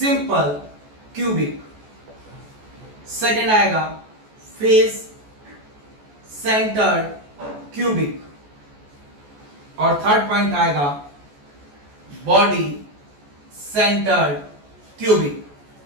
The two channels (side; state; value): left; late; 14 ms